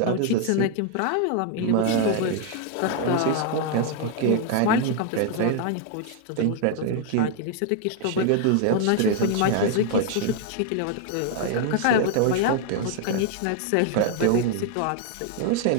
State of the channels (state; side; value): different; both; correlation 0.00